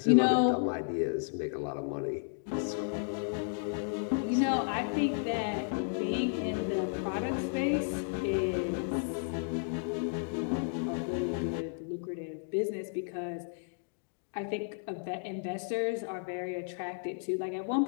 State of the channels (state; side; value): silent; right; digital silence